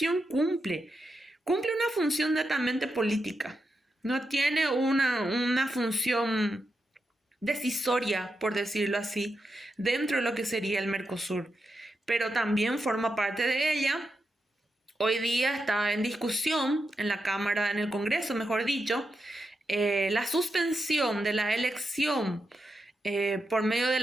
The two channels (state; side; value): normal; both; correlation 0.86